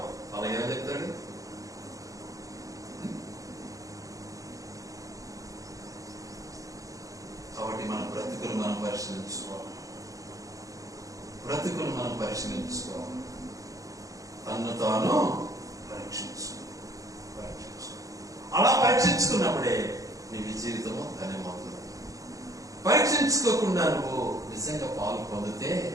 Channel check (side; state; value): left; late; 0.16 ms